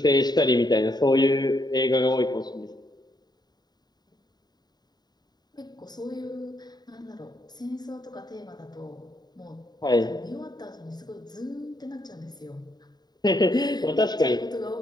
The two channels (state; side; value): late; right; 0.20 ms